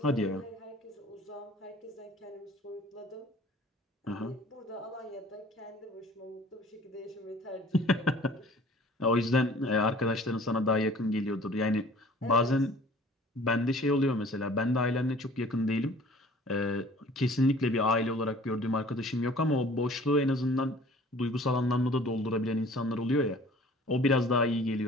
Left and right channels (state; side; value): normal; both; correlation 0.49